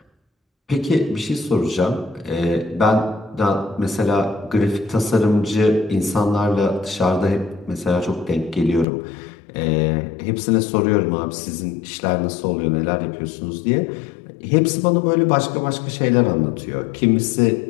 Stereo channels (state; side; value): drops out; right; at 8.8 s